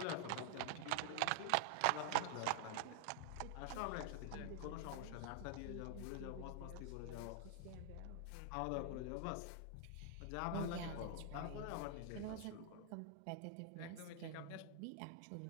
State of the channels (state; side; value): different; both; correlation 0.00